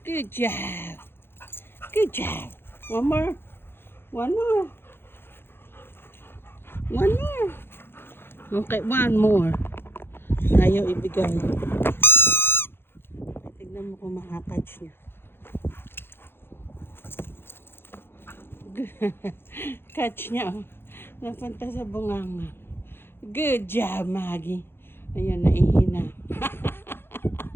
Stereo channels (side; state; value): right; late; 0.11 ms